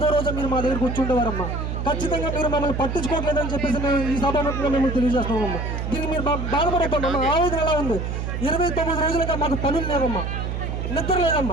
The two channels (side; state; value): right; noise; hum, 3 dB below the sound